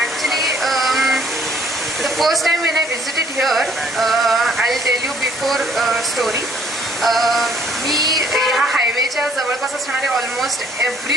Actually, the first time when I visited here, I'll tell you before story. मी ह्या हायवेच्या जवळपास असणारे ऑलमोस्ट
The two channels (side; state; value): both; normal; correlation 0.62